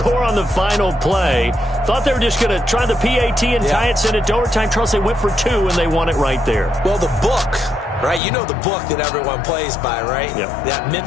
on the final play. Thought they were just going to try the PAT and tie it, send it to overtime. Charles, they went for 2, and they won it right there. Well, the book, right? You know the book that everyone plays by, right? Yep. That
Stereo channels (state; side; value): drops out; right; at 8.2 s